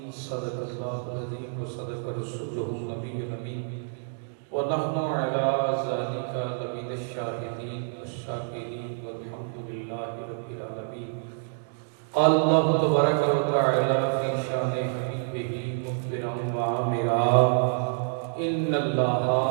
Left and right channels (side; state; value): left; silent; digital silence